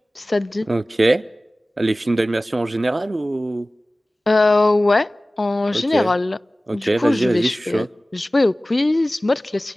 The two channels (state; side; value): normal; both; correlation 0.97